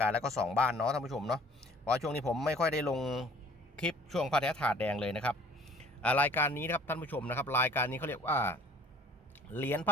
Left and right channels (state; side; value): normal; both; correlation 0.53